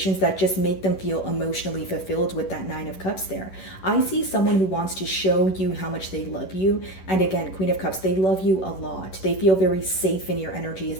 that just make them feel emotionally fulfilled with that Nine of Cups there. I see someone who wants to show you how much they love you. And again, Queen of Cups, they love you a lot. They feel very safe in your energy is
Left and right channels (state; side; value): late; right; 11 ms